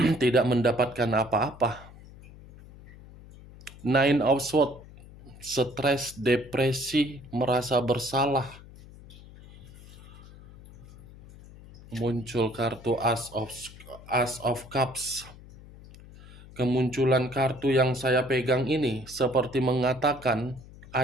tidak mendapatkan apa-apa. Nine of Swords, stres, depresi, merasa bersalah. Muncul kartu As of Cups. Kemunculan kartu yang saya pegang ini seperti mengatakan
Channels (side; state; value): left; noise; hum, 19 dB below the sound